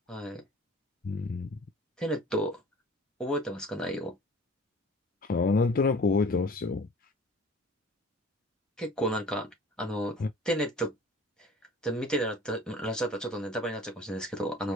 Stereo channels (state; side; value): normal; both; correlation 0.46